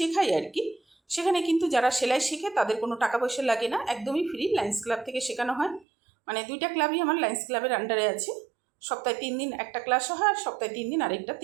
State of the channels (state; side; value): drops out; left; at 5.9 s